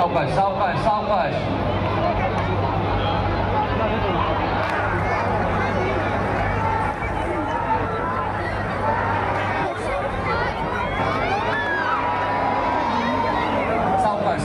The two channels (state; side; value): identical; both; correlation 1.00